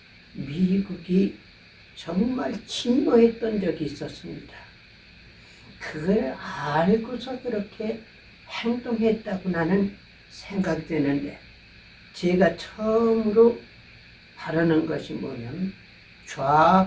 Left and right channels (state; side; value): identical; both; correlation 1.00